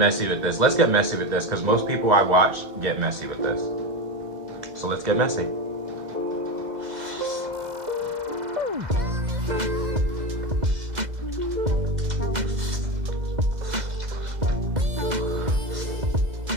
with this. Let's get messy with this, because most people I watch get messy with this. So let's get messy.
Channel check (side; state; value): left; late; 2.0 ms